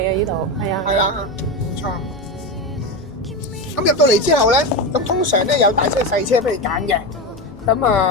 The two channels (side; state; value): both; normal; correlation 0.17